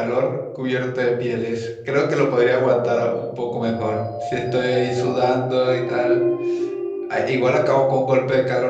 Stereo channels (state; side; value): identical; both; correlation 1.00